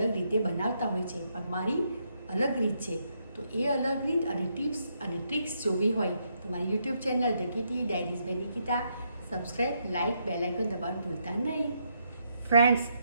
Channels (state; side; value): inverted; both; correlation -0.77